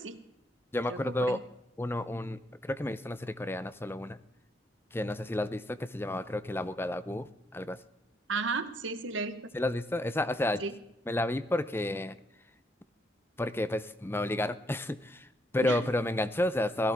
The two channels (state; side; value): normal; both; correlation 0.74